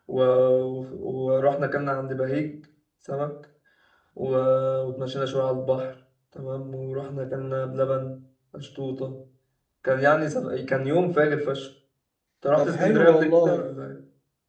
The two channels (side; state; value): both; identical; correlation 1.00